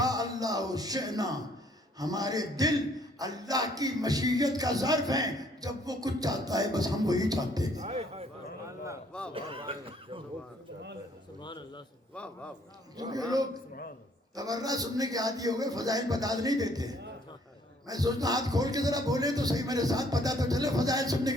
اللہ شئنا، ہمارے دل اللہ کی مشیت کا ظرف ہیں، جب وہ کچھ چاہتا ہے بس ہم وہی چاہتے ہیں۔ کیونکہ لوگ تبرہ سننے کے عادی ہو گئے، فضائل بتا نہیں دیتے۔ میں سوچتا ہاتھ کھول کے ذرا بولے تو صحیح، میرے ساتھ پتا تو چلے فضائل سننے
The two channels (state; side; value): normal; both; correlation 0.63